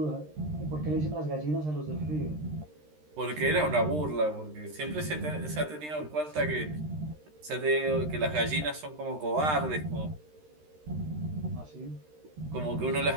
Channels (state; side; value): late; left; 13 ms